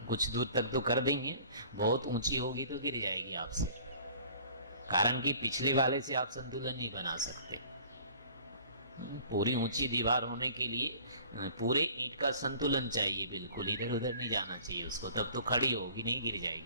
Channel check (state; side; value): inverted; both; correlation -0.49